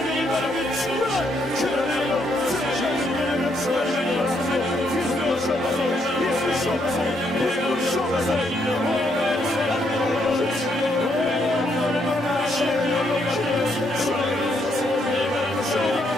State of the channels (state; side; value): normal; both; correlation 0.74